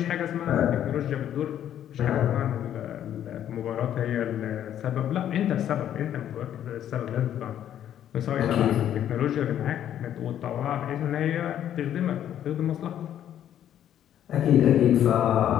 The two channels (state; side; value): quieter; right; 10.7 dB